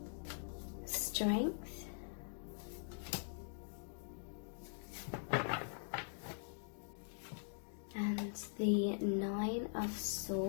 Strength, and the Nine of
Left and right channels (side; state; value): right; silent; digital silence